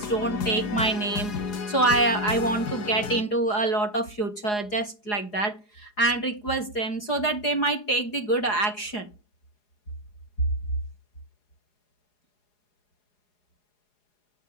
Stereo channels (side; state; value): right; late; 4.8 ms